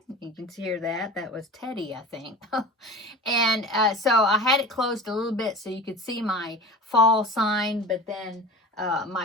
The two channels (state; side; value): normal; both; correlation 0.34